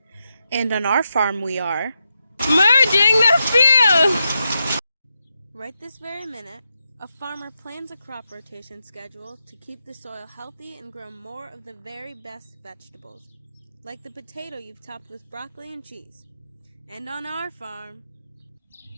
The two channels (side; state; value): both; inverted; correlation -0.87